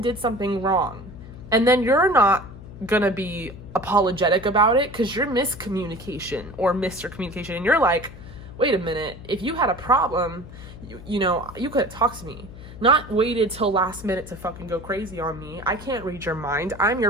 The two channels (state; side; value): noise; left; hum, 15 dB below the sound